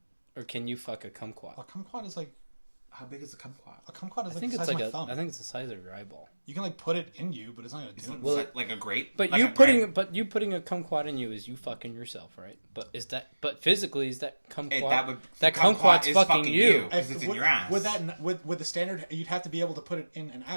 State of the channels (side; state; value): both; inverted; correlation -1.00